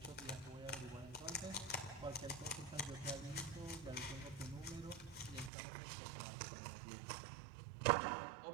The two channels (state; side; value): drops out; left; at 5.5 s